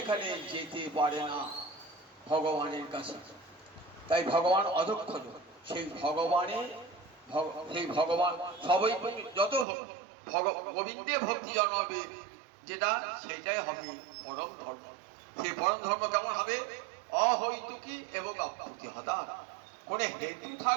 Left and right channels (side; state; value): left; drops out; at 9.7 s